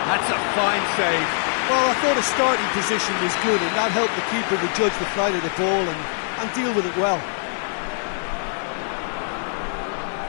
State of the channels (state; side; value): silent; right; 57 dB below the other